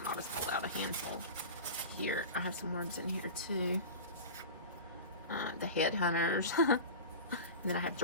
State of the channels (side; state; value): both; inverted; correlation -0.31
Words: I'll just pull out a handful here. I have some words in here too. The headhunters. And then I have